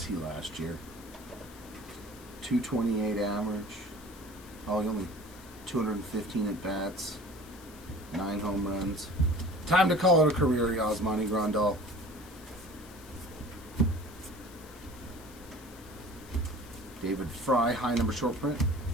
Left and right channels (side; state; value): left; noise; hiss, 21 dB below the sound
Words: he last year? 228 average. Oh, he only 215 at bats. 9 home runs. Time to call it a career, Yasmani Grandal. David Fry, high number short print.